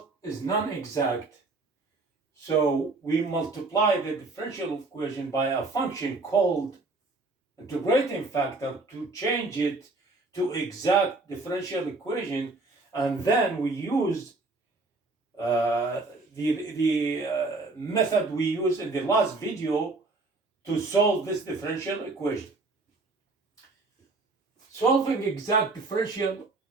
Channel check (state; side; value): quieter; left; 3.4 dB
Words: so we multiply the differential equation by a function called integrating factor to change it to exact differential equation, and then we use the method we used in the last video to solve this differential equation. Solving exact differential